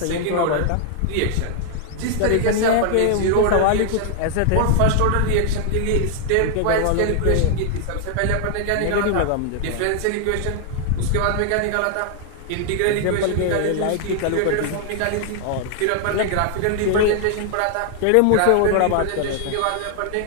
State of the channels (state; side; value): different; both; correlation 0.00